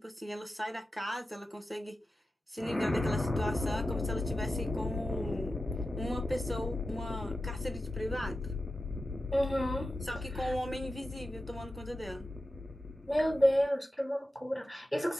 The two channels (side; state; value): both; normal; correlation 0.92